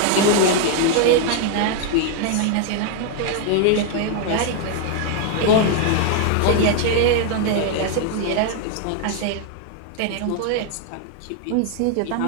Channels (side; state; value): both; different; correlation 0.00